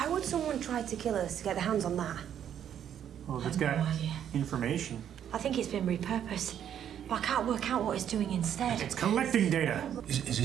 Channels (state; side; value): quieter; left; 9.6 dB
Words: would someone try to kill us to get their hands on that? Well, if it's got information. I think it's been repurposed, but I can't work out what it's doing instead. It's collecting data. Is